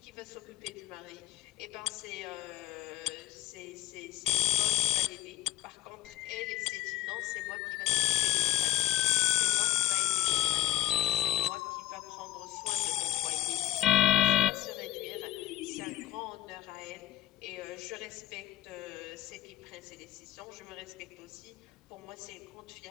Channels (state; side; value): quieter; right; 14.1 dB